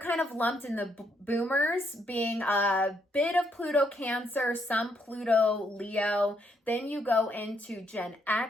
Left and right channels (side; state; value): both; normal; correlation 0.74